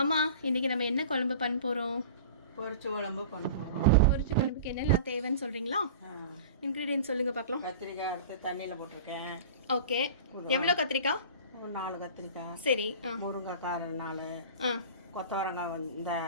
அம்மா இன்னைக்கு நம்ம என்ன குழம்பு பண்ண போகிறோம்? பொரிச்ச குழம்பு பண்ணுறோம். பொரிச்ச குழம்புக்கு என்னெல்லாம் தேவைன்னு சொல்கிறீங்களா? இன்க்ரீடியன்ட் சொல்லுங்கள் பார்க்கலாம். கத்திரிக்காய் எடுத்து தண்ணியில் போட்டிருக்கேன். ஓகே. எவ்வளோ கத்திரிக்காய்? ஒரு 4 கத்திரிக்காய். சரி. முருங்கைக்காய் 4. கொத்தவரங்காய் இந்த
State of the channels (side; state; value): both; inverted; correlation -0.38